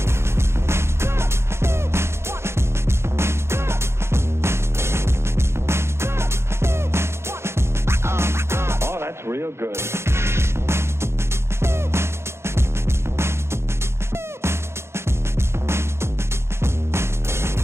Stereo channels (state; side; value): late; left; 0.13 ms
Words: Oh, that's real good.